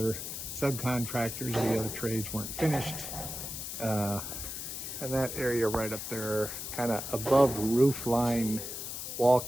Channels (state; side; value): noise; left; hiss, 6 dB below the sound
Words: subcontractors, the other trades weren't finished. And that area right up there, kind of above roof line wall